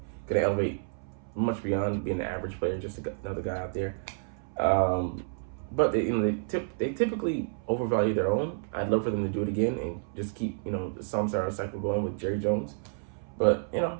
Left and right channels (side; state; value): left; silent; 58 dB below the other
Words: going to elevate much beyond being an average player, just another guy out there. But they typically overvalue their own. I'd love for them to do it again and just keep the Samsara cycle going with Jerry Jones. But I